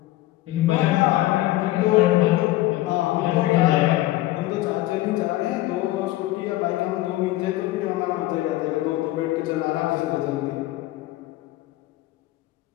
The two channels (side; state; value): right; quieter; 16.8 dB